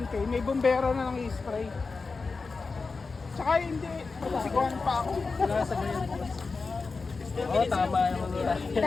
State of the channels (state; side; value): quieter; right; 4.3 dB